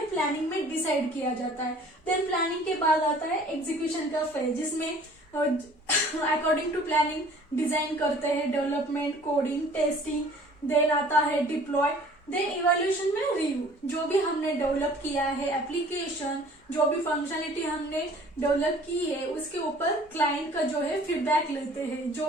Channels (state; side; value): normal; both; correlation 0.51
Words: प्लानिंग में डिसाइड किया जाता है। देन प्लानिंग के बाद आता है एग्जीक्यूशन का फेज, जिसमें अकॉर्डिंग टू प्लानिंग डिजाइन करते हैं, डेवलपमेंट, कोडिंग, टेस्टिंग, देन आता है डिप्लॉय, देन इवैल्यूएशन में रिव्यू। जो भी हमने डेवलप किया है एप्लीकेशन, जो भी फंक्शनलिटी हमने डेवलप की है, उसके ऊपर क्लाइंट का जो है फीडबैक लेते हैं। जो